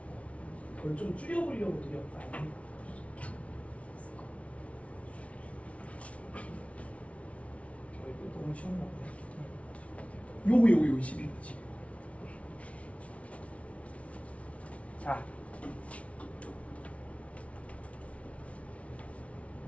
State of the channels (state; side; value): late; right; 0.064 ms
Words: 그걸 좀 줄여보려고 노력 많이 해. 이거 너무 쉬운 거 같아. 요거 12거지. 자.